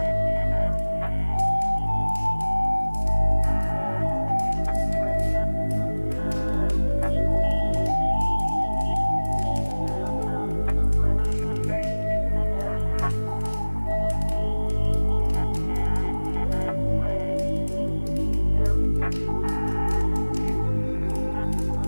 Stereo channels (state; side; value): inverted; both; correlation -1.00